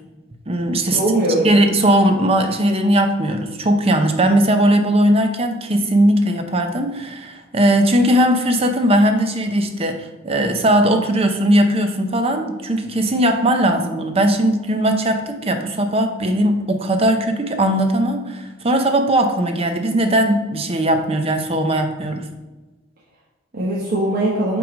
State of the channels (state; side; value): normal; both; correlation 0.53